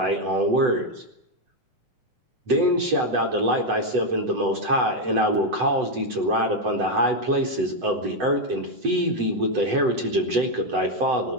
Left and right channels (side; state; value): left; late; 8.0 ms